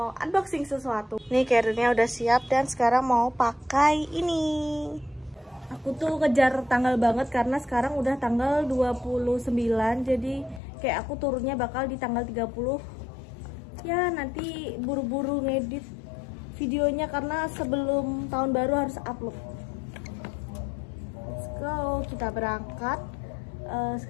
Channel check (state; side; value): drops out; right; at 10.6 s